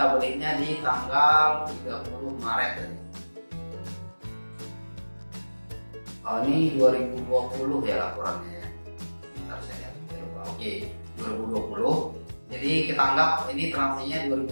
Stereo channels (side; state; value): both; inverted; correlation -1.00